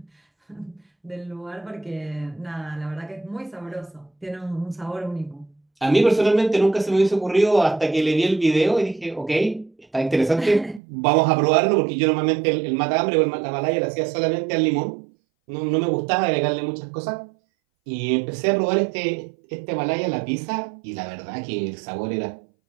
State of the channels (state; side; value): drops out; left; at 10.8 s